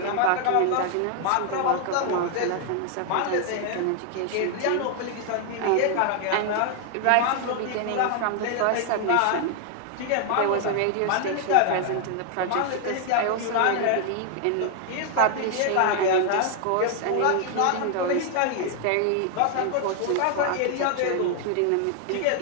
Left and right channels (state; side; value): different; both; correlation 0.00